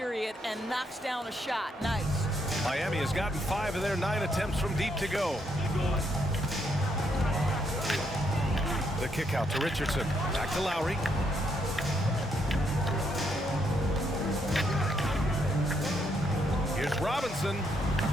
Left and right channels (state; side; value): normal; both; correlation 0.75